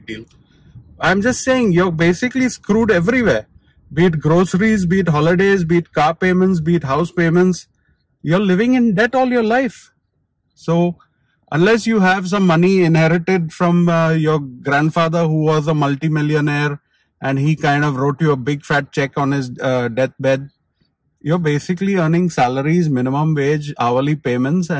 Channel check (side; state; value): both; identical; correlation 1.00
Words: deal. I'm just saying you're basically screwed everywhere. Be it groceries, be it holidays, be it car payments, be it house payments. You're living in debt all your life. So unless you have some money inherited from your grandfather who was a multimillionaire and he kind of wrote you a big fat check on his deathbed, you're basically earning salaries, minimum wage, hourly payments,